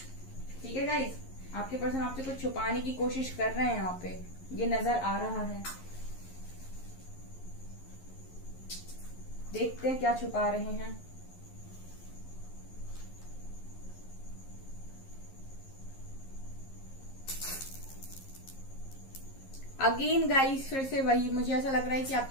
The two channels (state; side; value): late; right; 11 ms